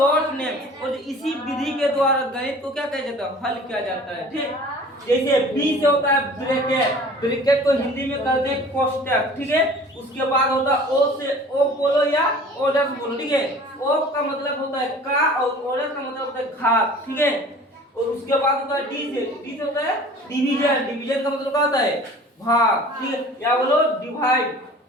name. और इसी विधि के द्वारा गणित को क्या कहा जाता है? हल किया जाता है। ठीक, जैसे बी से होता है ब्रैकेट, ब्रैकेट को हिंदी में कहते हैं कोष्टक। ठीक है, उसके बाद होता है ओ से ओ बोलो या ऑर्डर बोलो। ठीक है, ओ का मतलब होता है का और ऑर्डर का मतलब होता है घात। ठीक है, और उसके बाद होता है डी से होता है डिवीजन, डिवीजन का मतलब क्या होता है? भाग। ठीक है, या बोलो डिवाइड।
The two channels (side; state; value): both; normal; correlation 0.46